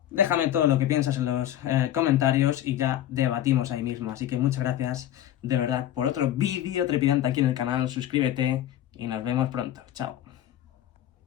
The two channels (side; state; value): right; quieter; 12.2 dB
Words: Déjame todo lo que piensas en los comentarios y ya debatimos ahí mismo. Así que muchas gracias de verdad por otro vídeo trepidante aquí en el canal. Suscríbete y nos vemos pronto. Chao.